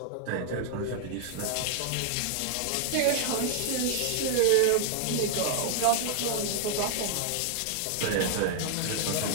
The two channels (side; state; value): both; different; correlation 0.00